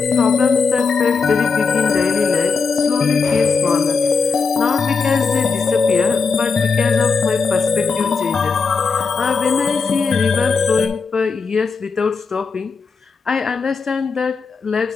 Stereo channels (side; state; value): right; quieter; 4.9 dB